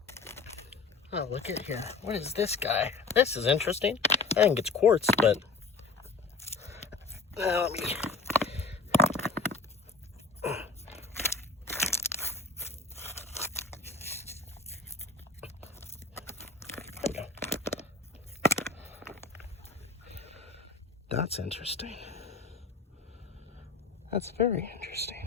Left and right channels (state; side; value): quieter; right; 4.1 dB